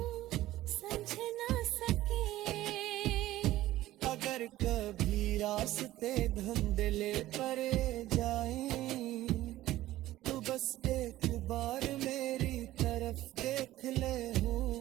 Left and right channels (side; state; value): left; quieter; 15.4 dB